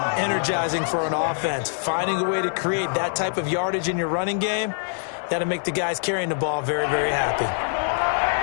energizing for an offense. Finding a way to create that type of yardage in your running game, that'll make the guys carrying the ball very, very happy.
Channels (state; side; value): silent; right; digital silence